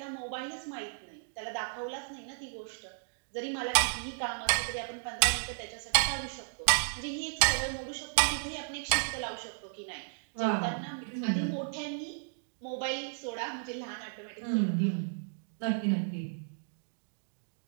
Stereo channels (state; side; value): silent; left; digital silence